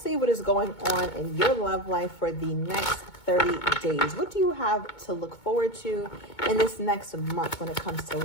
what is going on in your love life for the next 30 days. What do you have to look forward to in this next month when it comes to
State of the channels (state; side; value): late; right; 2.2 ms